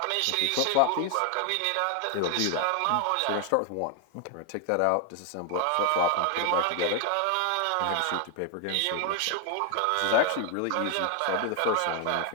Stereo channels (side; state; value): both; different; correlation 0.00